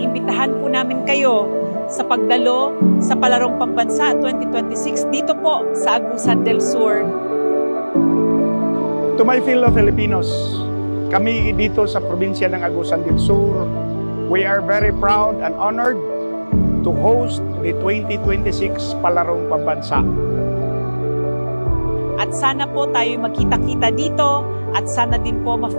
po namin kayo sa pagdalo sa Palarong Pambansa 2026 dito po sa Agusan del Sur. To my fellow Filipinos, kami dito sa probinsya ng Agusan del Sur, we are very proud and honored to host the 2026 Palarong Pambansa. At sana po tayo magkita-kita dito at sana din po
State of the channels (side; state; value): both; inverted; correlation -1.00